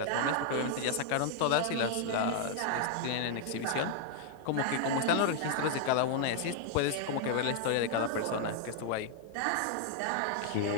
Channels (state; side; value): different; both; correlation 0.00